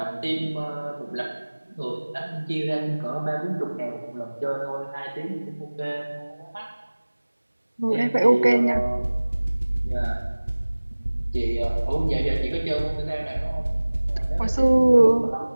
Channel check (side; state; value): both; inverted; correlation -1.00